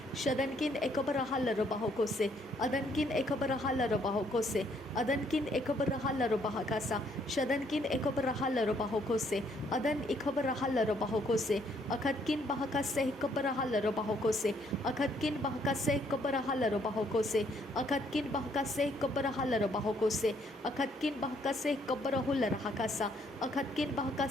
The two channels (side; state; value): both; normal; correlation 0.68